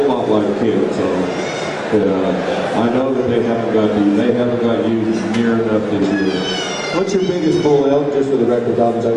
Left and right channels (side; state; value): both; identical; correlation 1.00